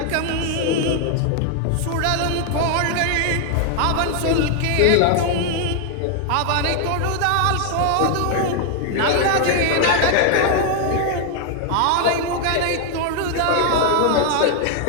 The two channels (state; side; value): different; both; correlation 0.00